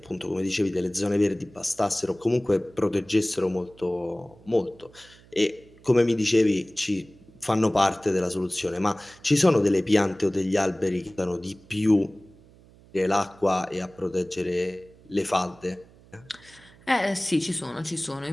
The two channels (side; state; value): right; noise; hum, 25 dB below the sound